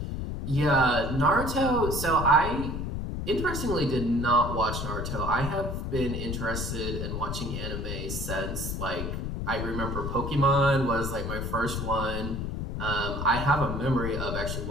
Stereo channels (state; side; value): noise; left; rumble, 4 dB below the sound